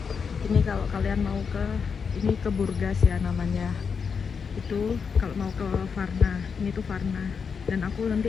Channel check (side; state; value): right; quieter; 6.0 dB